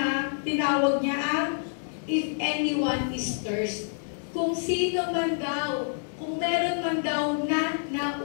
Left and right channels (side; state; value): right; silent; 60 dB below the other